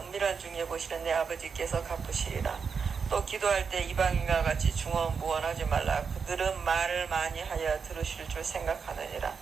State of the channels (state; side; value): quieter; left; 5.8 dB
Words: 중에 보시는 내 아버지께서 갚으시리라. 또 기도할 때 이방인과 같이 중언부언하지 말라. 그들은 말을 많이 하여 들으실 줄 생각하느니라.